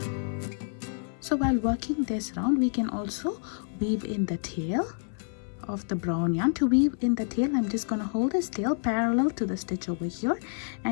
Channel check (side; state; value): right; silent; 59 dB below the other